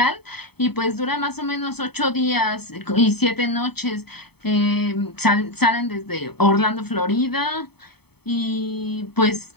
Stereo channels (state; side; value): late; right; 0.97 ms